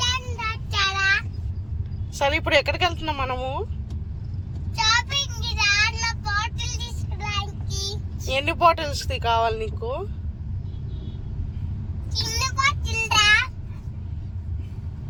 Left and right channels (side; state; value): both; identical; correlation 1.00